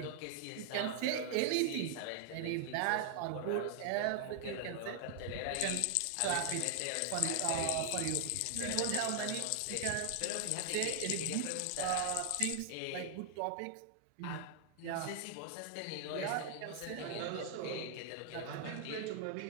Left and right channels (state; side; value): different; both; correlation 0.00